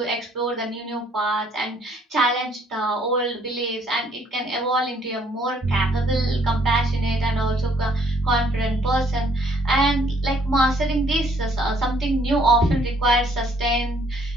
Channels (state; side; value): normal; both; correlation 0.63